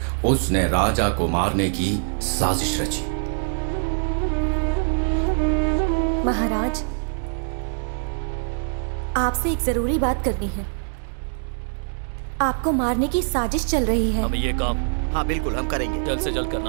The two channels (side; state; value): left; silent; digital silence